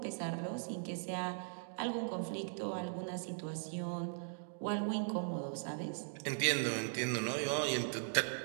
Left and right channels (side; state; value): left; silent; digital silence